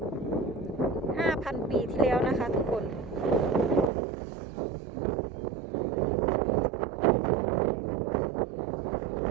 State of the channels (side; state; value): left; drops out; at 3.9 s